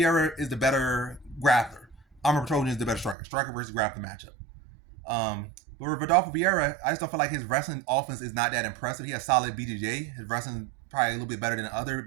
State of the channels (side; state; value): left; drops out; at 3.2 s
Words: is the better grappler. Armin Petrosyan is the better striker. Striker versus grappler matchup. But with Rodolfo Vieira, I just don't feel like his wrestling offense is not that impressive. He has solid BJJ. His wrestling probably a little bit better than other